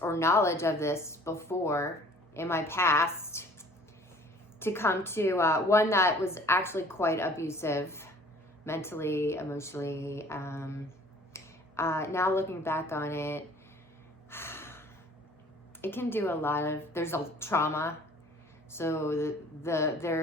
knowledge of this before in my past, to come to one that was actually quite abusive, mentally, emotionally. Now looking back on it, it can do a lot of, there's a trauma. So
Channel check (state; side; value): normal; both; correlation 0.52